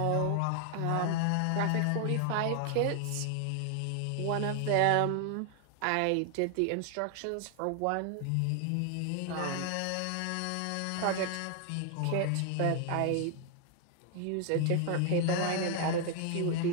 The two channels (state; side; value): different; both; correlation 0.00